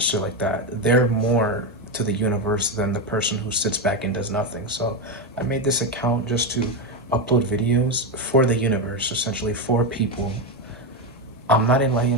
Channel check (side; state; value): both; normal; correlation 0.10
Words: like that, they're more to the universe than the person who sits back and does nothing. So I made this account just to upload videos for the universe, essentially for people. I'm not